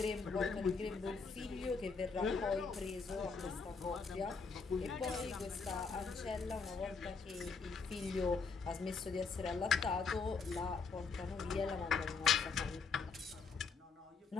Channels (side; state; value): right; quieter; 4.9 dB